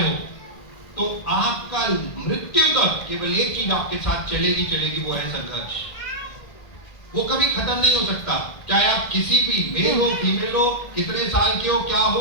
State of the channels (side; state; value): right; late; 1.6 ms